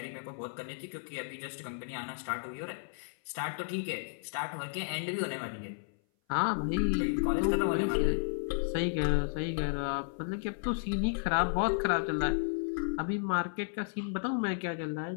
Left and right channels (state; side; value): silent; right; 56 dB below the other